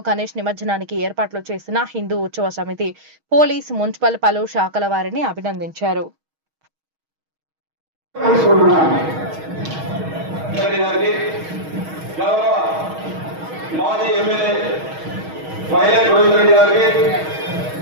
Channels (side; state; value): left; late; 6.3 ms